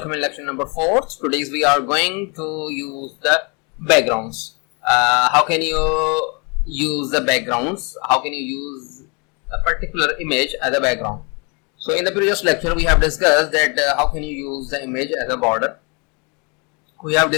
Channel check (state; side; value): quieter; right; 32.6 dB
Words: in lecture number 4. Today we are going to use the backgrounds. How can you use the backgrounds? How can you use a particular image as a background? So in the previous lecture we have discussed that how can you use the image as a border. We have